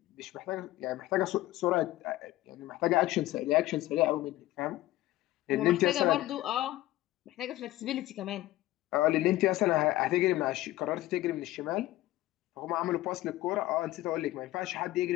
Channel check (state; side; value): quieter; right; 16.3 dB